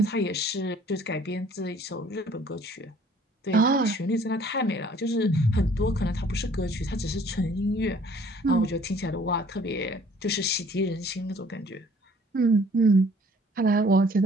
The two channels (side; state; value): both; normal; correlation 0.56